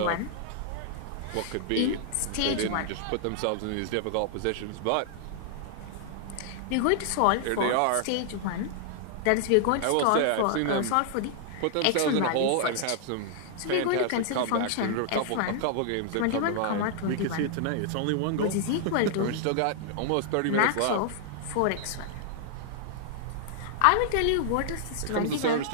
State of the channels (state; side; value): different; both; correlation -0.01